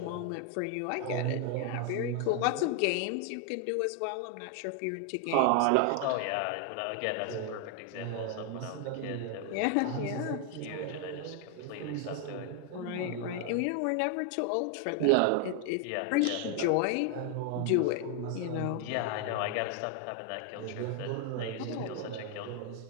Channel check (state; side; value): different; both; correlation 0.00